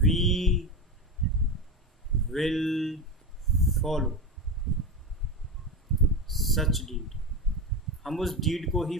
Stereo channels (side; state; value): both; normal; correlation 0.20